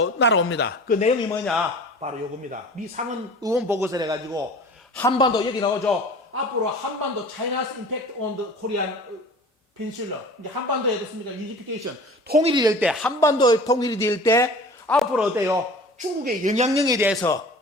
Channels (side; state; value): both; normal; correlation 0.42